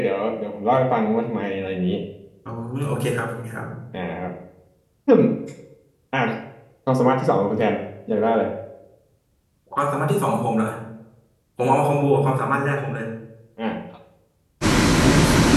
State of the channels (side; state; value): both; identical; correlation 1.00